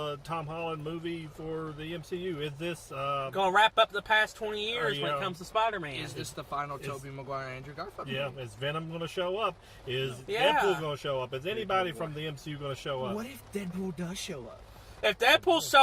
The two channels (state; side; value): identical; both; correlation 1.00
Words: Tom Holland movie for the MCU? Is this Going to wrap up the past 20 years when yeah. it comes to Spider-Man. Is this the final Tobey Maguire Andrew Garfield yeah? movie? Is Venom going to show up? Is Yeah. Deadpool going to show up? Is anybody from the MCU going to show up? What if Deadpool does show up? If Deadpool